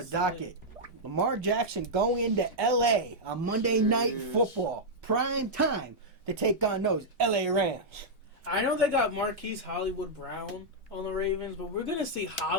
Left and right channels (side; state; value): both; normal; correlation -0.06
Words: docket. Lamar Jackson going into L.A. on Monday Night Football. Prime time to take on those L.A. Rams. I know they got Marquise Hollywood Brown on the Ravens, but we're going to see